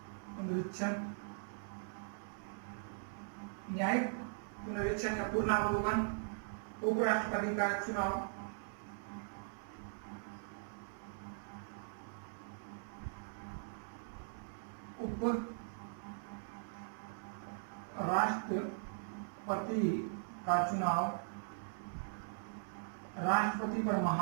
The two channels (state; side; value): silent; left; 51 dB below the other